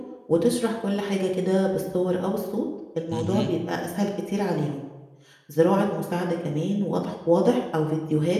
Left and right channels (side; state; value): both; identical; correlation 1.00